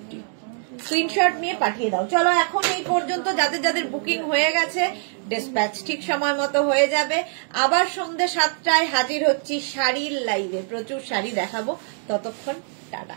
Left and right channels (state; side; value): silent; left; 56 dB below the other